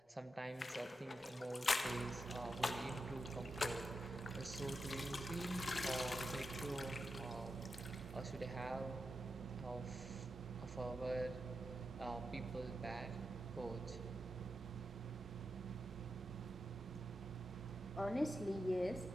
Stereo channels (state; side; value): normal; both; correlation 0.88